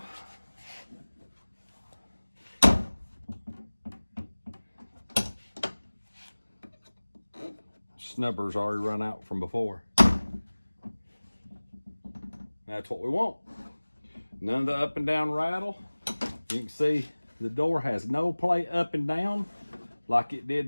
snubber's already run out from before. That's what we want. None of the up and down rattle. You can see the door has no play up and down like it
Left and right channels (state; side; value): inverted; both; correlation -1.00